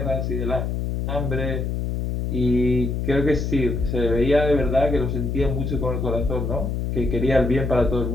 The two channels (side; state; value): left; noise; hum, 1 dB below the sound